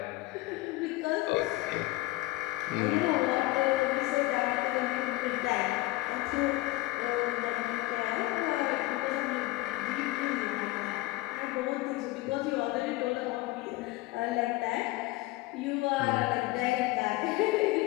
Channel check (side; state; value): right; quieter; 19.9 dB